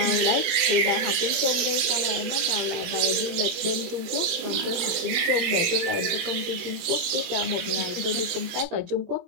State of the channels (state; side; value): late; left; 18 ms